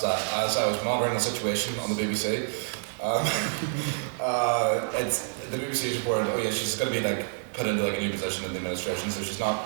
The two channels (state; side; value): silent; left; digital silence